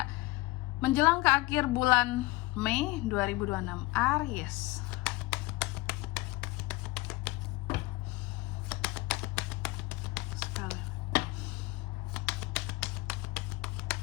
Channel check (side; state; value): right; quieter; 20.2 dB